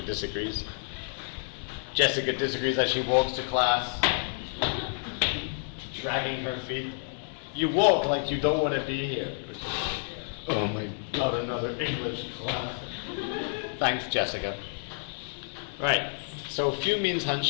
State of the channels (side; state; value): right; silent; digital silence